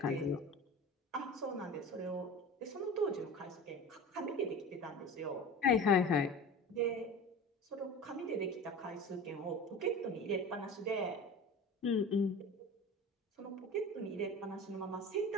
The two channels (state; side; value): normal; both; correlation 0.34